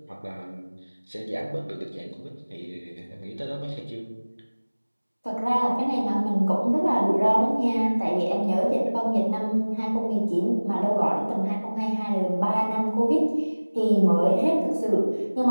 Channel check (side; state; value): both; inverted; correlation -1.00